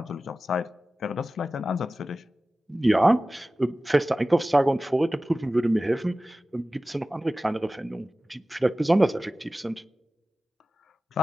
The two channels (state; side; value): normal; both; correlation 0.96